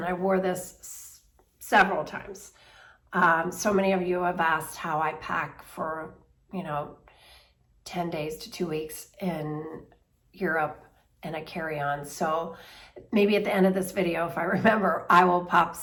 I wore this several times. So many of you have asked how I pack for, 10 days to 2 weeks in Europe and a carry-on. So maybe at the end of this video, if I remember, I will pop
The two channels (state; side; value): identical; both; correlation 1.00